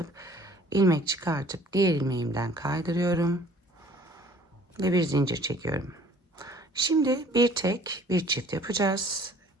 ilmek çıkartıp diğer ilmeğimden kaydırıyorum. Ve bir zincir çekiyorum. Şimdi bir tek bir çift yapacağız.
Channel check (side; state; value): both; normal; correlation 0.53